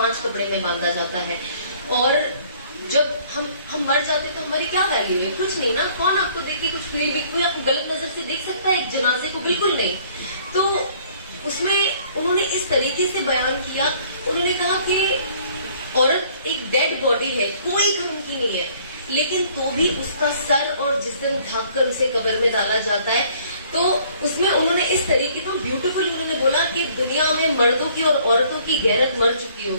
कपड़े में बांधा जाता है। और जब हम मर जाते तो हमारी क्या वैल्यू है? कुछ नहीं ना। कौन आपको देख के कुछ फील भी, कोई आपको गलत नजर से देख सकता है एक जनाजे को? बिल्कुल नहीं। तो उसमें उन्होंने इस तरीके से बयान किया, उन्होंने कहा कि औरत एक डेड बॉडी है, कोई काम की नहीं है, लेकिन तो भी उसका सर और जिस्म ढक कर उसे कब्र में डाला जाता है। तो उसमें उन्होंने इस तरीके का ब्यूटीफुल उन्होंने बोला कि दुनिया में मर्दों की और औरतों की गैरत मर चुकी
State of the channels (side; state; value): both; inverted; correlation -0.58